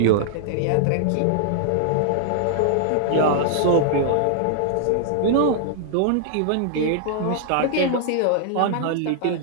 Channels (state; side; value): different; both; correlation -0.01